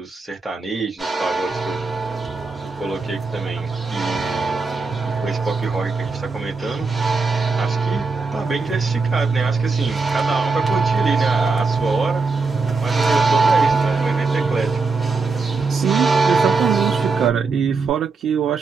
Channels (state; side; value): quieter; left; 4.2 dB